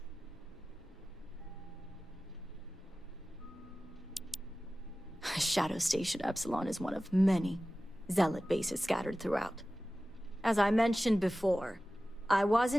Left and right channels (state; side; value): normal; both; correlation 0.96